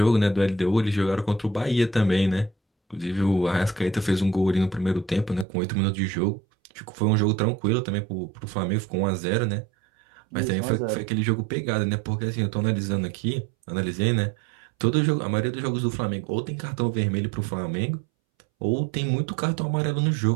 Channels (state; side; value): drops out; left; at 5.5 s